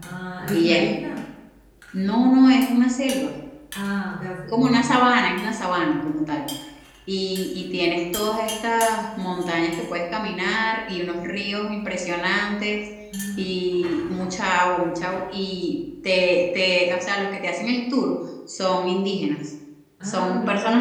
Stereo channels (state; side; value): identical; both; correlation 1.00